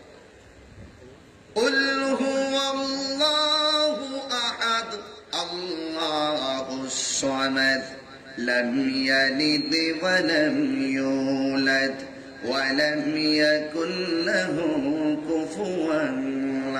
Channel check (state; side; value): identical; both; correlation 1.00